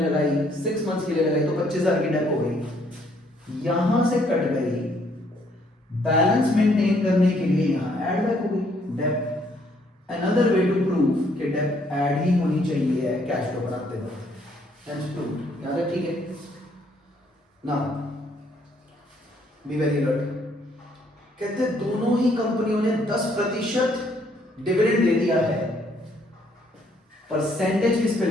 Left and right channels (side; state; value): both; normal; correlation 0.67